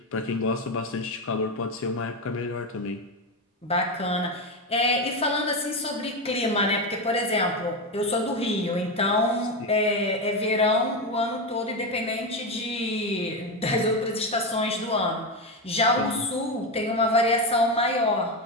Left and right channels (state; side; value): normal; both; correlation 0.13